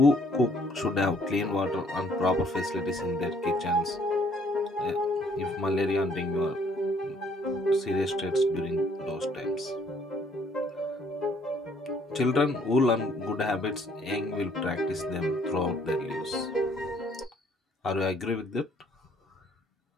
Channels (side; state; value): both; normal; correlation 0.63